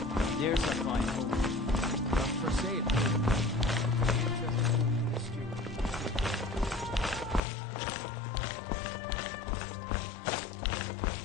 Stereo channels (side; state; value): right; drops out; at 7.4 s